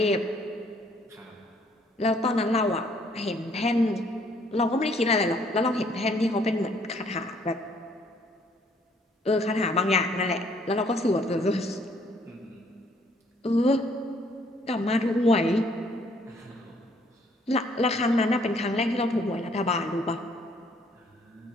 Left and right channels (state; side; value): normal; both; correlation 0.64